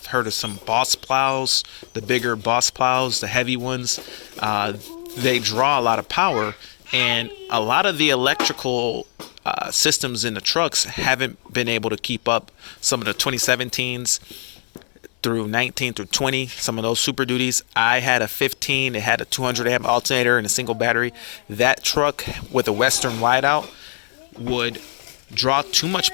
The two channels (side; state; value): right; silent; digital silence